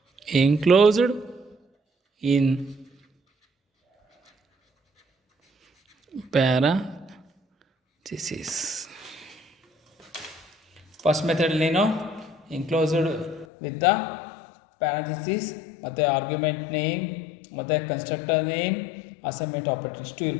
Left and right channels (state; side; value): drops out; right; at 13.5 s